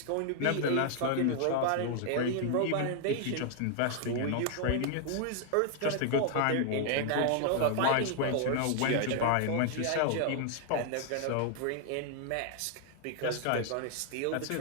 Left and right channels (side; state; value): both; different; correlation 0.00